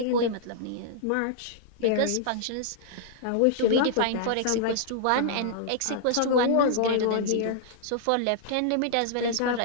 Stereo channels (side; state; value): both; different; correlation -0.02